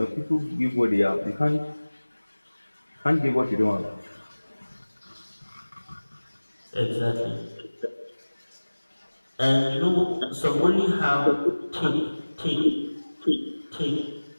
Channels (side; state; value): both; inverted; correlation -1.00